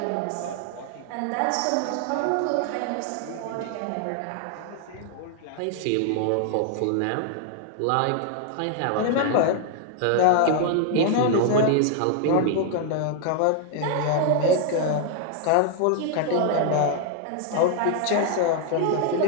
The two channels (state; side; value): different; both; correlation 0.00